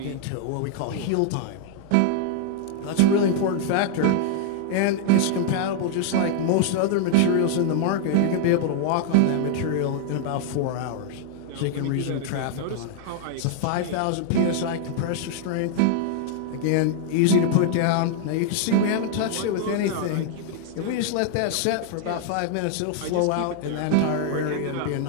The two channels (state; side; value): different; both; correlation 0.00